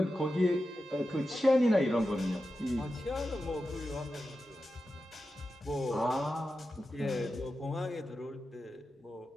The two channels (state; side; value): normal; both; correlation 0.91